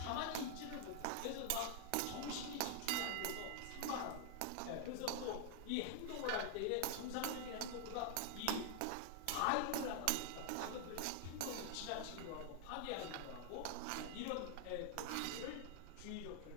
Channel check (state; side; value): different; both; correlation 0.00